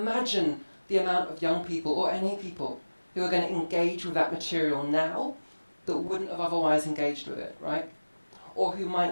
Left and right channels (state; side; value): inverted; both; correlation -1.00